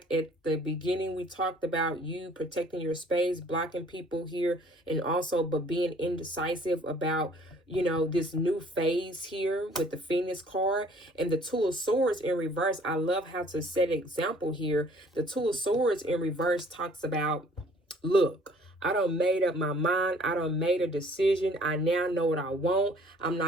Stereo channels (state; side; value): normal; both; correlation 0.56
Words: at the beginning we talked about you protecting your space, blocking people here, and also but being indecisive about, you know, this new phase here with the Phoenix card and the Two of Swords in reverse. I love how to set an example here. The Two of Swords in reverse talks about, look, I done made up my mind. I done made a decision. I now know what I want. I'm